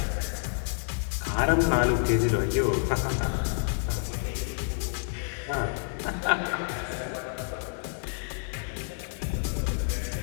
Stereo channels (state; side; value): silent; right; digital silence